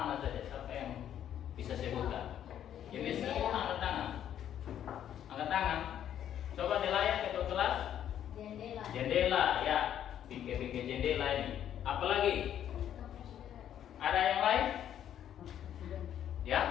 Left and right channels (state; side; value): quieter; right; 10.3 dB